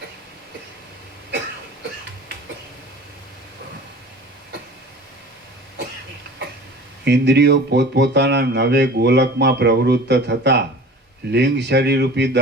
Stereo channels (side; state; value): both; normal; correlation 0.40